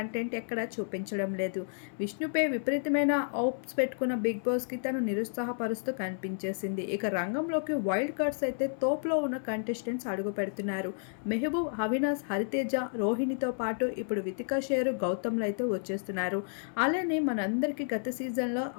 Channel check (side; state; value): right; silent; 57 dB below the other